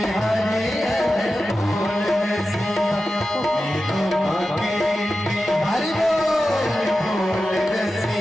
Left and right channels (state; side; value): normal; both; correlation 0.92